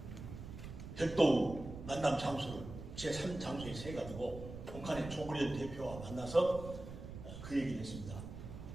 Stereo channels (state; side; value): noise; right; rumble, 10 dB below the sound